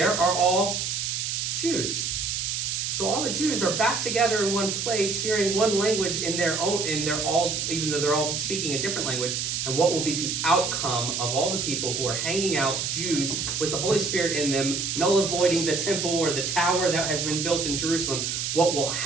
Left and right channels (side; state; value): right; noise; hiss, 1 dB below the sound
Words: are all Jews. So all the Jews are back together in one place, hearing one language even though they're all speaking a different language. And what will be the outcome of all the people who are hanging out, Jews, with the Holy Spirit in them, null avoiding the temple or the tower that has been built in Jerusalem? What will